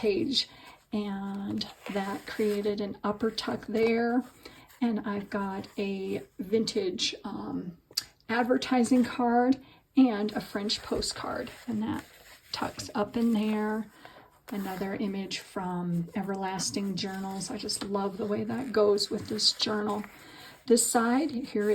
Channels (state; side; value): identical; both; correlation 1.00